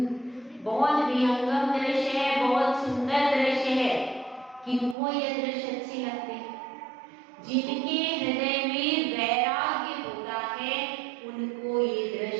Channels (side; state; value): left; drops out; at 5.0 s